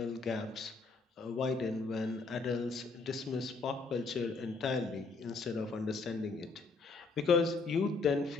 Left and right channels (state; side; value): quieter; right; 4.1 dB